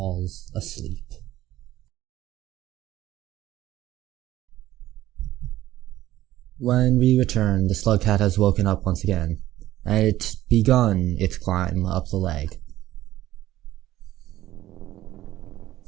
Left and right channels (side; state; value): left; quieter; 14.5 dB